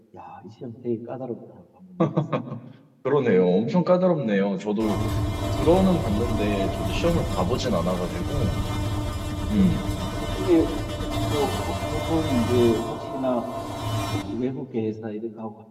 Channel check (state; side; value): identical; both; correlation 1.00